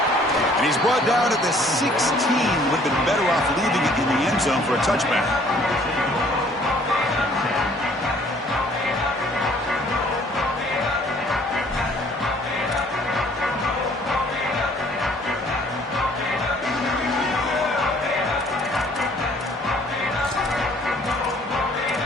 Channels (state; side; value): normal; both; correlation 0.58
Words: And he's brought down at the 16. Would have been better off leaving it in the end zone for a touchback.